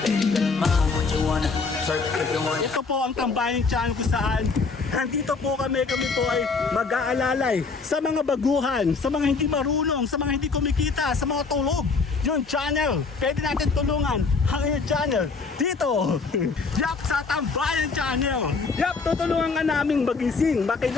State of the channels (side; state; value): right; quieter; 4.5 dB